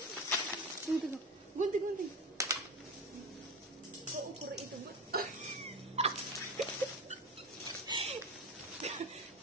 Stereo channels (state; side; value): normal; both; correlation 0.25